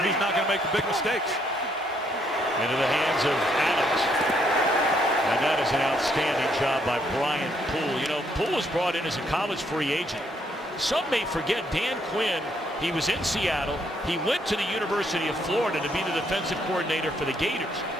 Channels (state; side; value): normal; both; correlation 0.71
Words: who's not going to make the big mistakes. Into the hands of Adams. And that is an outstanding job by Brian Poole. You know, Poole was brought in as a college free agent. Some may forget Dan Quinn. He was in Seattle. He went to the University of Florida to be the defensive coordinator for the Gators.